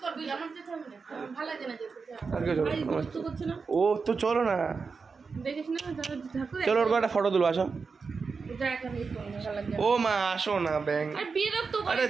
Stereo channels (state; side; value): quieter; left; 4.9 dB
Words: ও তো চলো না, চলো ওর একটা ফটো তুলো, আসো। ও মা আসো না, ব্যাং, আরে